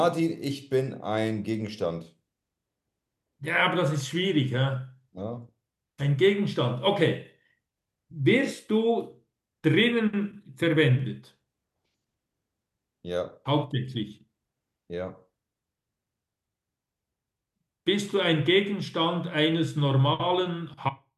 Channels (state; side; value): identical; both; correlation 1.00